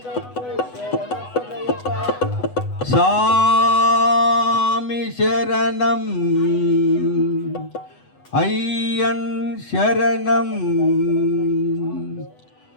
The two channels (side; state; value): right; late; 8.1 ms